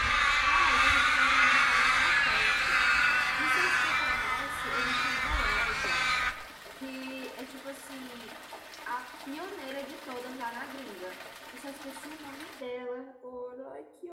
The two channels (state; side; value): identical; both; correlation 1.00